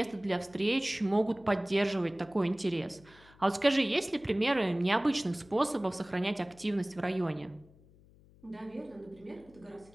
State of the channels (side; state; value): left; noise; hum, 26 dB below the sound